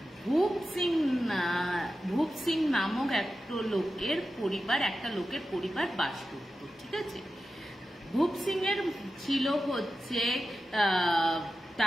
ভূপ সিং নামক একটা লোকের পরিবার বাস করত। ঠিক আছে, ভূপ সিং এর ছিল হচ্ছে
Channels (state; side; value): normal; both; correlation 0.92